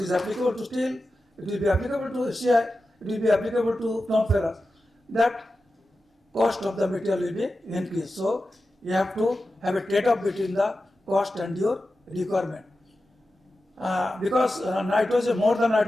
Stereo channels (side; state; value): both; normal; correlation 0.92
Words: is applicable to steel, it will be applicable to CI, it will be applicable to non-ferrous. That cost of the material will be increased. So you have to have a trade-off between the cost and your requirement. Because nitrogen, more than